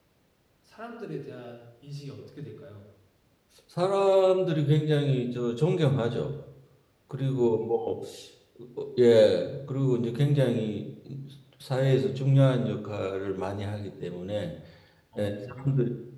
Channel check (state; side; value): identical; both; correlation 1.00